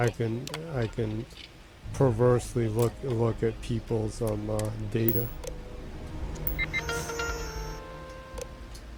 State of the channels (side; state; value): both; identical; correlation 1.00